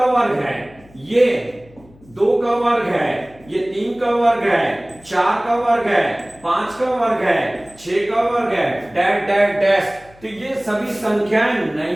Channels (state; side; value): noise; left; hum, 26 dB below the sound